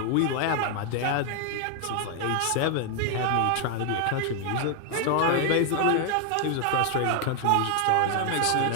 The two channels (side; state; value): both; different; correlation 0.00